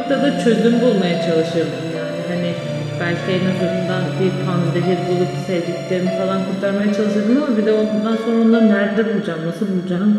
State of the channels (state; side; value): identical; both; correlation 1.00